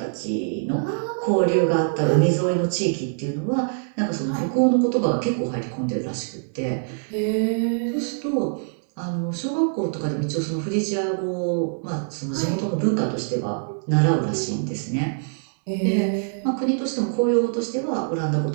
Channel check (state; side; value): silent; left; digital silence